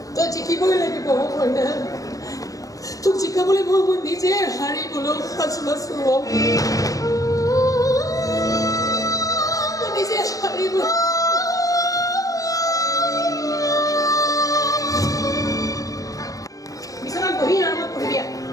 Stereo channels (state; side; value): late; right; 0.17 ms